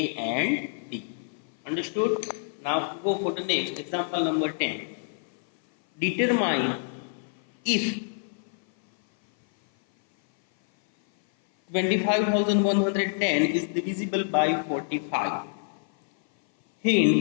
and D. Understood? Now go for the next example number 10. Determine if 25,110 is divisible by 45.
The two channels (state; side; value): silent; right; 57 dB below the other